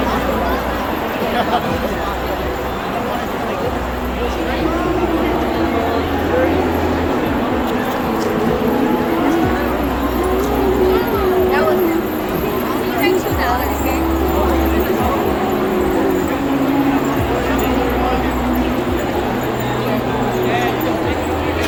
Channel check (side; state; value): both; identical; correlation 1.00